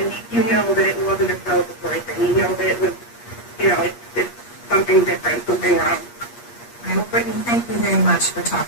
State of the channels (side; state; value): right; late; 8.4 ms